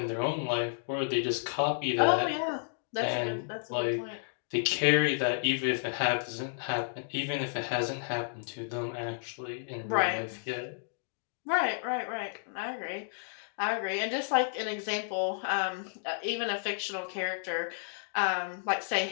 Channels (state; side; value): silent; right; digital silence